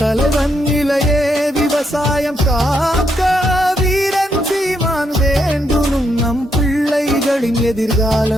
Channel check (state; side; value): normal; both; correlation 0.78